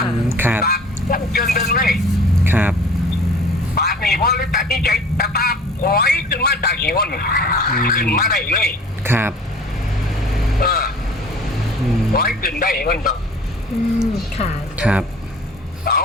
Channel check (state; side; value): normal; both; correlation 0.46